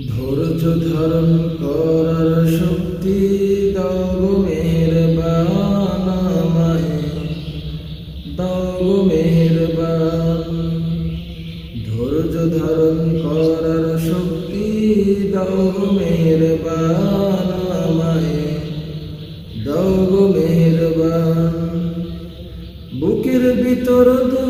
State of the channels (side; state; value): both; identical; correlation 1.00